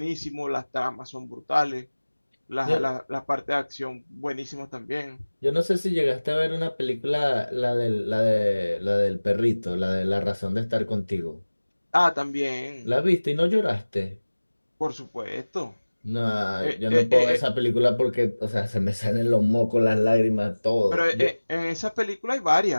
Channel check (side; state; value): both; inverted; correlation -1.00